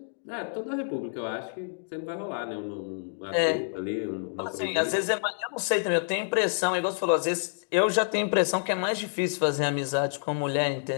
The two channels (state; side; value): silent; right; digital silence